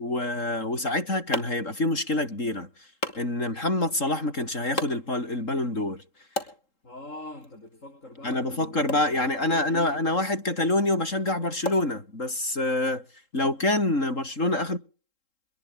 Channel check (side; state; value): right; late; 3.7 ms